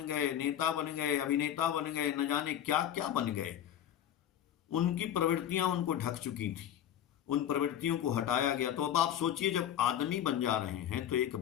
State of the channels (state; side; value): quieter; right; 10.5 dB